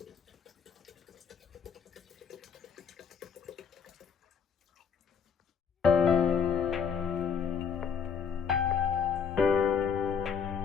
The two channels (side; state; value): right; quieter; 6.8 dB